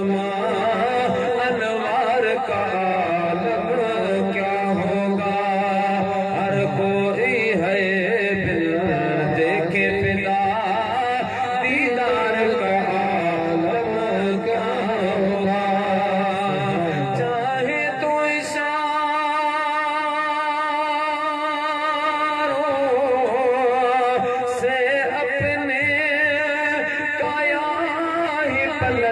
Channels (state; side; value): identical; both; correlation 1.00